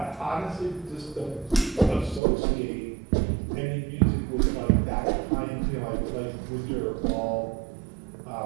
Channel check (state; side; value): drops out; left; at 2.2 s